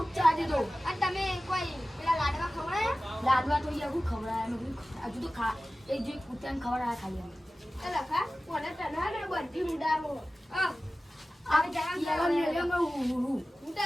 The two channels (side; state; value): both; normal; correlation 0.96